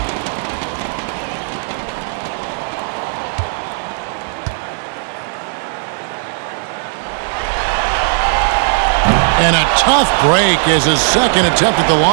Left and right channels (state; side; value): silent; left; digital silence